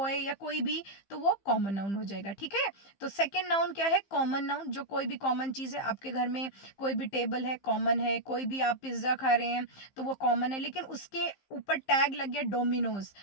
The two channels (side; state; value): right; late; 15 ms